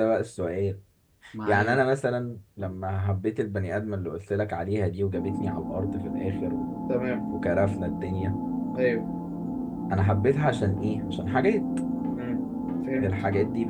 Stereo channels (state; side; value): identical; both; correlation 1.00